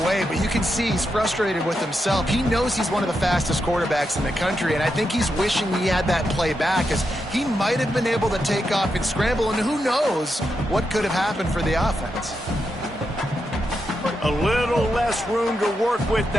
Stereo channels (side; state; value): both; normal; correlation 0.85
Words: but you can see he's frustrated with himself. He knows he's one of the fastest quarterbacks in the country, and I think he's wishing he had that play back, as he might have been able to take off and scramble, and who knows what could have happened for the offense. A little less room to work with